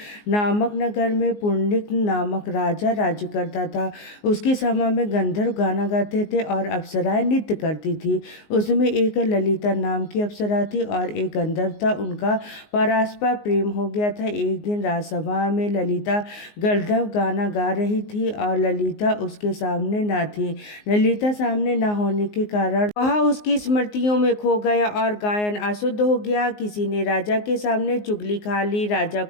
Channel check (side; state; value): right; late; 19 ms